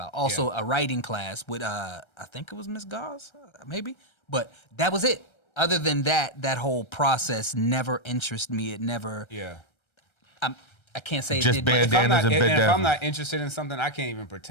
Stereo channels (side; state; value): right; late; 1.3 ms